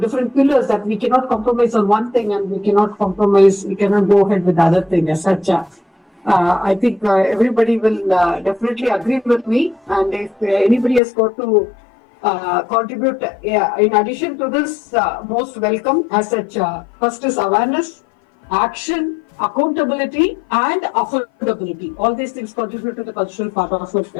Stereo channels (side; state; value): right; drops out; at 11.0 s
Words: different pillars that we cannot compromise on one thing, and we cannot go ahead with the other thing as such. I think everybody will definitely agree with me, and if anybody has got to contribute, in addition to this, most welcome as such. First is awareness, action, accountability, and affordability. All these things contribute to the cultural part of